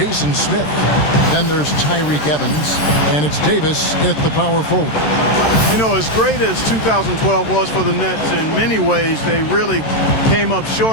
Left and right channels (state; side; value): late; right; 13 ms